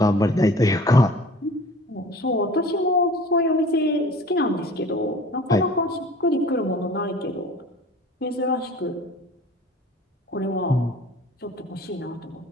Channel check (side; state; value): both; normal; correlation 0.45